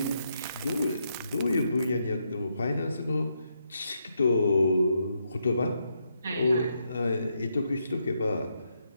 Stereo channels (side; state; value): both; inverted; correlation -0.80